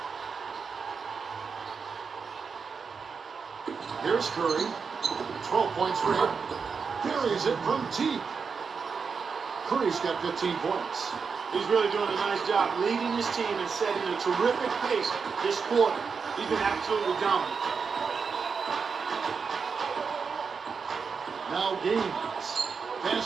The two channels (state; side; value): quieter; left; 5.5 dB